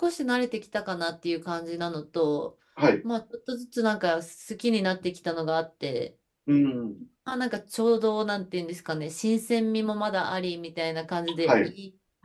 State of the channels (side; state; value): both; identical; correlation 1.00